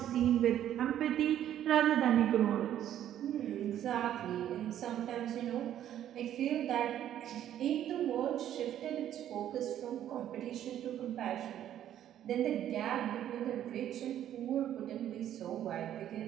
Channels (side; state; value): left; quieter; 11.2 dB